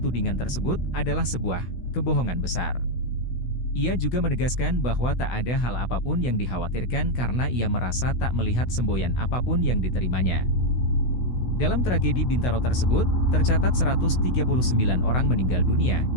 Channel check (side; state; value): right; late; 16 ms